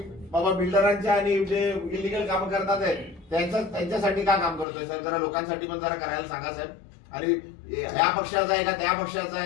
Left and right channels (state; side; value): drops out; right; at 4.7 s